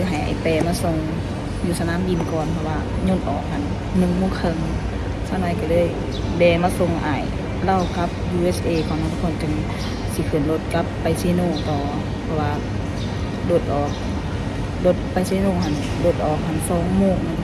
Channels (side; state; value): both; identical; correlation 1.00